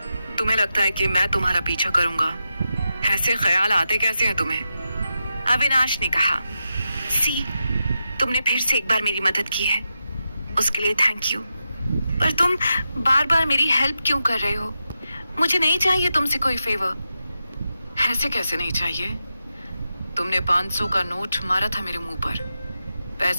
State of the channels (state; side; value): inverted; both; correlation -0.89